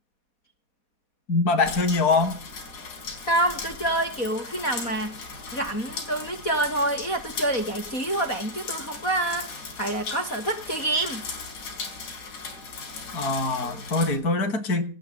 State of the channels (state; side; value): late; right; 4.2 ms